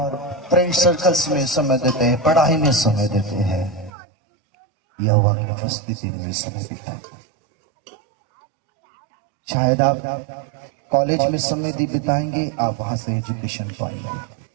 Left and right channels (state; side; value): drops out; left; at 3.9 s